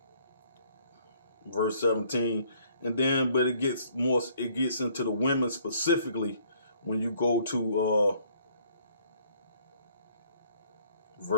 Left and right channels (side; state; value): both; inverted; correlation -0.62